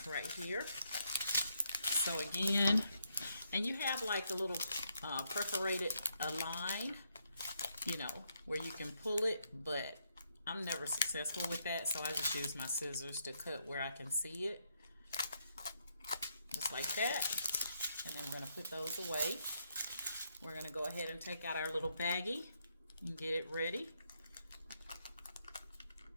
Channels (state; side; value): inverted; both; correlation -0.76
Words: right here. So again, and you have like a little perforated line, you know, where you can pull it, but I'm never successful with that, so I just use my scissors to cut where I can see it. Just like that. And then we're going to put those away. We're going to go ahead and take out our little baggie and get it ready.